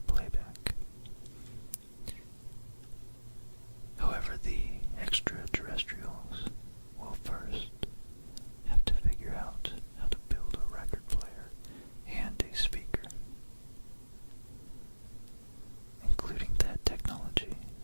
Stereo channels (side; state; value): both; inverted; correlation -1.00